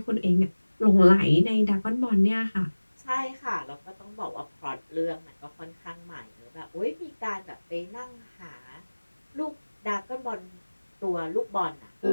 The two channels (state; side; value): inverted; both; correlation -1.00